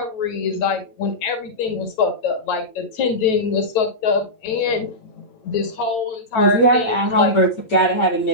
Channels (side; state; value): right; late; 9.1 ms